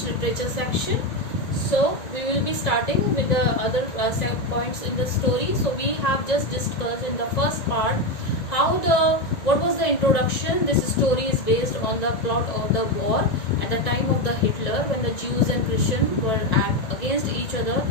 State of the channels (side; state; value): right; late; 1.9 ms